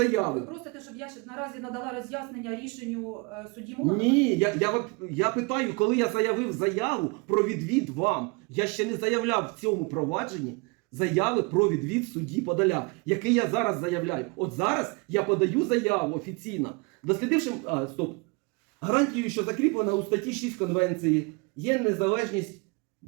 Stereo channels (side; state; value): left; quieter; 29.8 dB